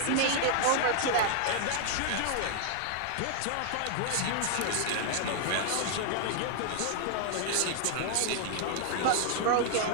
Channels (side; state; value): both; different; correlation 0.00